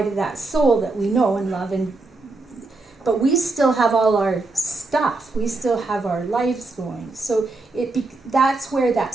to that soul that we know and love, but we still have all our stuff. We still have our lives going. So that's where that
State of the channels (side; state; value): left; quieter; 3.3 dB